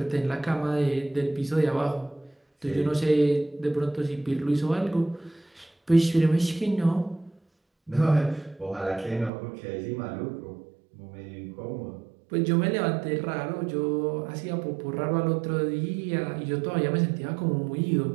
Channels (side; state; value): left; drops out; at 9.3 s